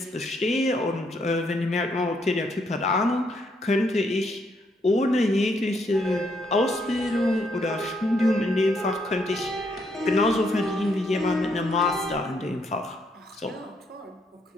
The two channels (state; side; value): normal; both; correlation 0.74